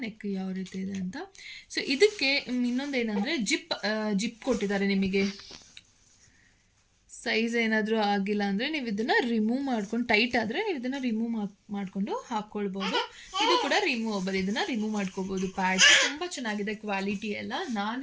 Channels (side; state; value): both; identical; correlation 1.00